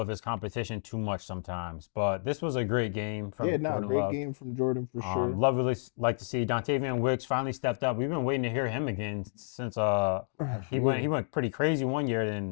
of his competition too much sometimes. But this was a great game from Jordan great Love. game from Jordan for sure. Love really like to see Dontavian Wicks finally stepped up. We've been waiting to hear him again since he went pretty crazy one year,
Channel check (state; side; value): silent; right; digital silence